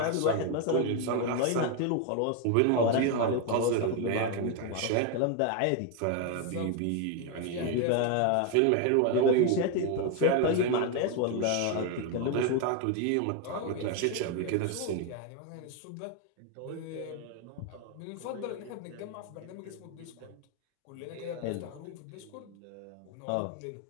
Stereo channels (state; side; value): different; both; correlation 0.01